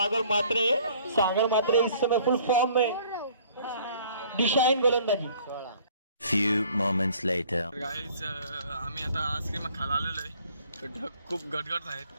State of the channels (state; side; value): inverted; both; correlation -0.56